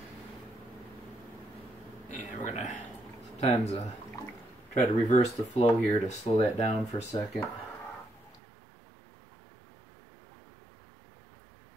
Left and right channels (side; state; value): left; drops out; at 8.4 s